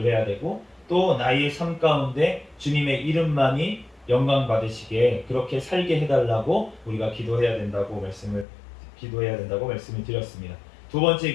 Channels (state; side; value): drops out; right; at 8.5 s